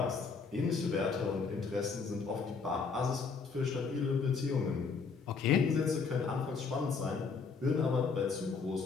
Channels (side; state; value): right; quieter; 5.1 dB